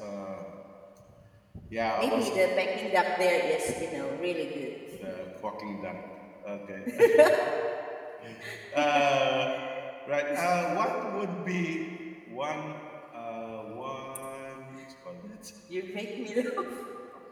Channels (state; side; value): identical; both; correlation 1.00